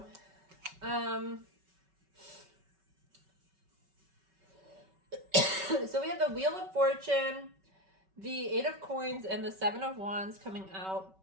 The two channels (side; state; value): left; late; 5.3 ms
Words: So we have the Wheel of Fortune, the Eight of Coins, and the Seven of Wands coming out